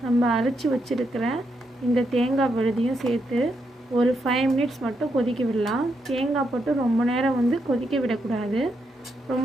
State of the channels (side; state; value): both; normal; correlation 0.80